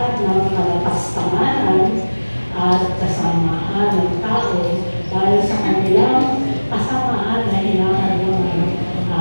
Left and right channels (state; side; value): inverted; both; correlation -1.00